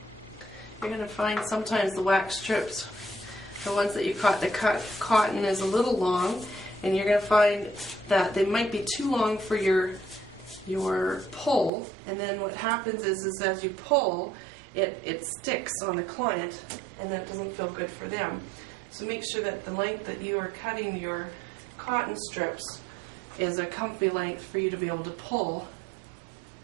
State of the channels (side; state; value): left; drops out; at 11.7 s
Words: You're going to find sometimes the wax strips, the ones that you cut, the cotton is a little long, and you're going to find that they might be too long for your pull, and then what happens is as you pull, it sticks on the client, and that doesn't feel good for them. So make sure that the length that you are cutting your cotton strips is a comfy length for you to be able to pull